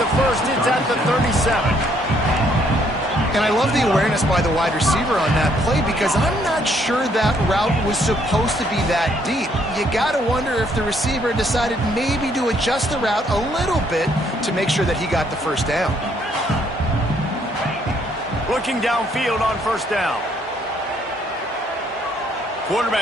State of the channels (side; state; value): both; normal; correlation 0.68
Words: 1st. It's at the 37. And I love the awareness by the wide receiver on that play because I'm not sure that route was supposed to be that deep. You got to wonder if the receiver decided maybe to adjust the route a little bit to make sure that he got the 1st down. Looking downfield on 1st down.